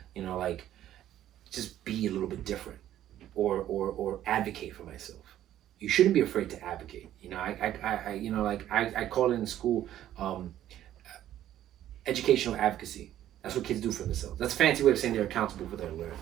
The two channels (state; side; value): quieter; left; 12.2 dB